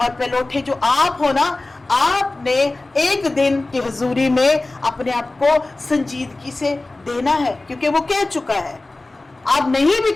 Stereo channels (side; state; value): right; quieter; 3.0 dB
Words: पहलौठे जो आप हो ना, आपने एक दिन की हुजूरी में अपने आप को संजीदगी से देना है, क्योंकि वो कह चुका है। आप नहीं भी